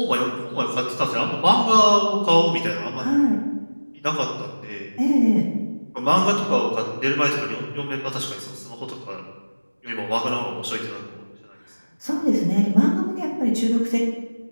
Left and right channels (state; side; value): inverted; both; correlation -1.00